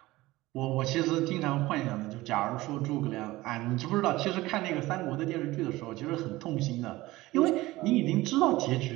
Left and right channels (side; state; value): left; quieter; 18.7 dB